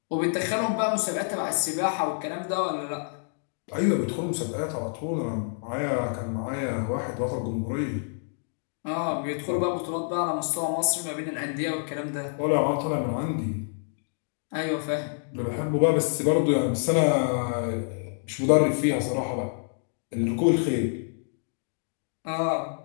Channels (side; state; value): right; silent; digital silence